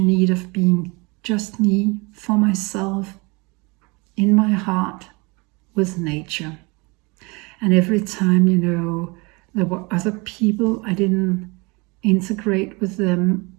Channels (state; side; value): quieter; left; 27.4 dB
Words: of being just me, for myself, in my heart, with nature. And every time, there were other people, I didn't integrate with them,